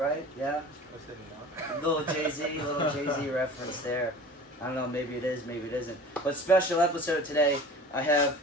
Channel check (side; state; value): both; normal; correlation 0.41